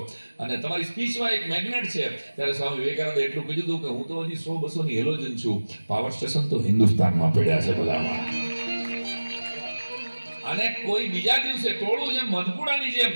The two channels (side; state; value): both; inverted; correlation -1.00